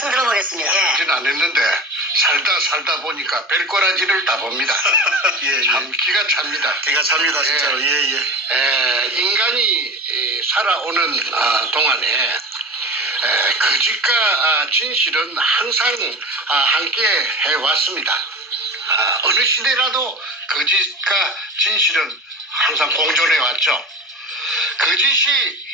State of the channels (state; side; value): normal; both; correlation 0.32